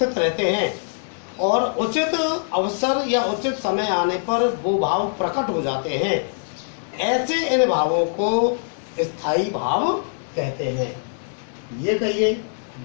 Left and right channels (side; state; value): right; silent; digital silence